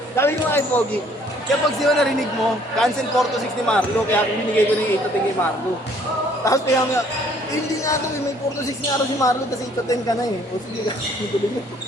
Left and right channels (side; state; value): both; normal; correlation 0.60